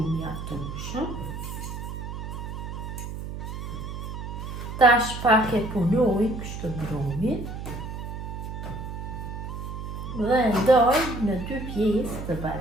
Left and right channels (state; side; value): noise; right; hum, 7 dB below the sound